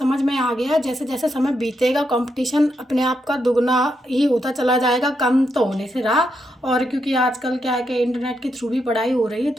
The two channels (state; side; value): normal; both; correlation 0.81